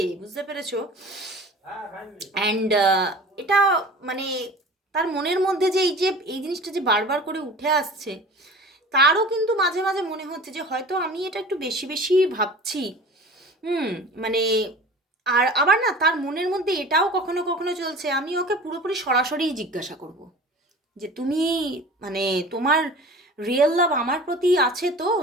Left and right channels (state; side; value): normal; both; correlation 0.40